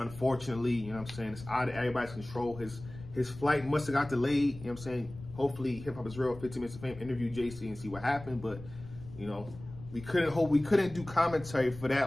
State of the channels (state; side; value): noise; left; rumble, 15 dB below the sound